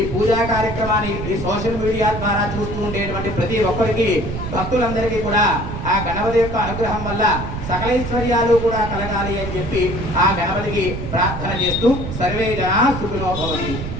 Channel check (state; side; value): noise; right; rumble, 6 dB below the sound